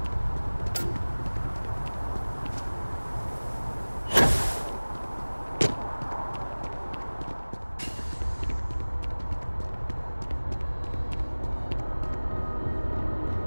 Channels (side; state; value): both; inverted; correlation -1.00